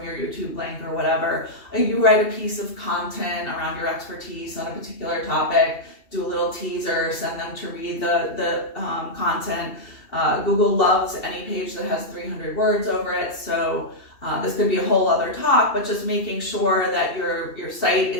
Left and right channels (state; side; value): late; right; 2.8 ms